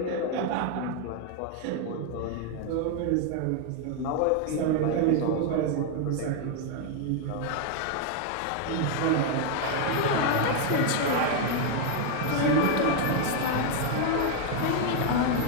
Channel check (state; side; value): different; both; correlation 0.00